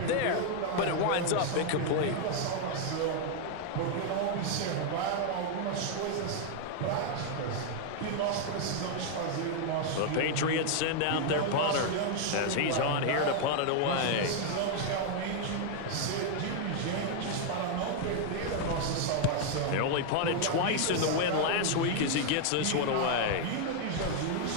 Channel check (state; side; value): different; both; correlation 0.00